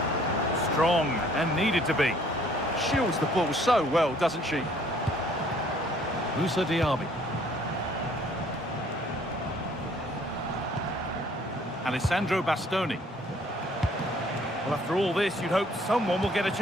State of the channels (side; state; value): both; normal; correlation 0.60